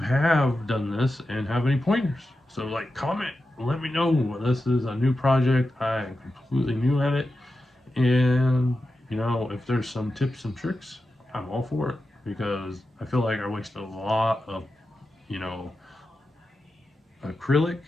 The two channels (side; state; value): both; normal; correlation 0.91